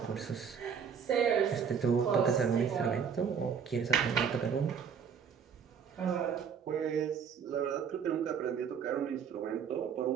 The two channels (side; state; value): left; quieter; 7.0 dB